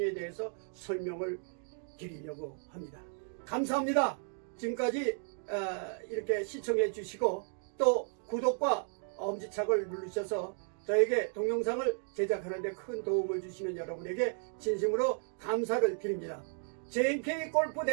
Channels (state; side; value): silent; left; 55 dB below the other